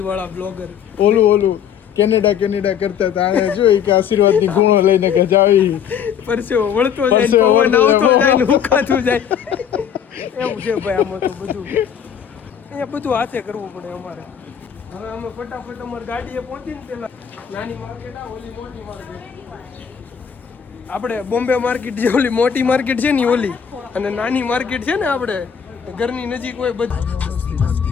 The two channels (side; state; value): right; quieter; 8.2 dB